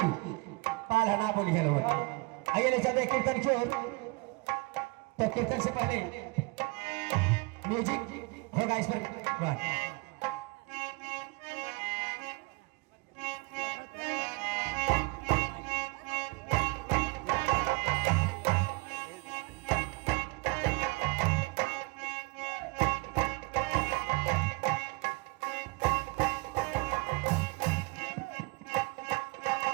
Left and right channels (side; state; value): left; quieter; 26.5 dB